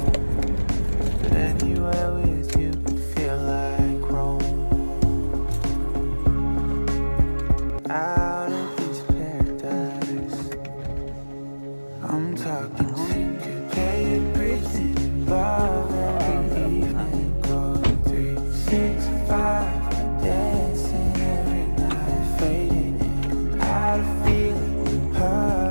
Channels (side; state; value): both; inverted; correlation -1.00